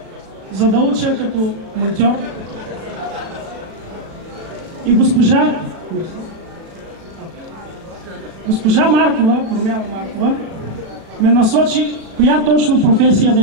за да уча като монтьор, и госпожа Маркова, Промяна Маркова, ме насочи коя точно професия да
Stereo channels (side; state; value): left; late; 36 ms